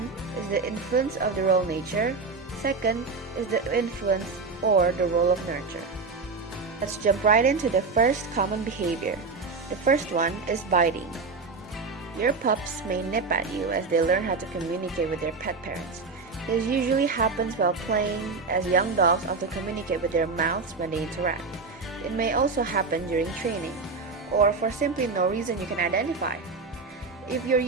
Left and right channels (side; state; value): left; quieter; 4.4 dB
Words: is the influence of the role nature. Second is the influence or the role of nurture. Let's jump right into the first common behavior. The first one is biting. Your pups may nip at you as they learn how to communicate with their pet parents. This usually happens while playing, as young dogs often communicate with their mouths when they interact. It may also happen during training, or for simply no reason you can identify. If your